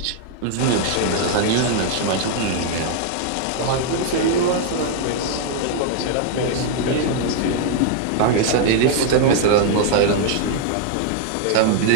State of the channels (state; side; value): different; both; correlation 0.00